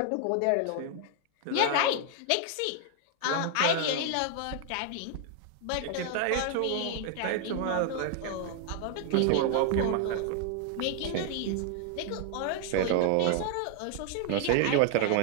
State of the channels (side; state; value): both; different; correlation 0.00